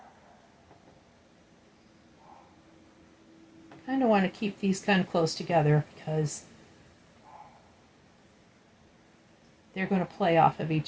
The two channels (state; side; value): identical; both; correlation 1.00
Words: Kind of want to keep these kind of close together because they're going to play off of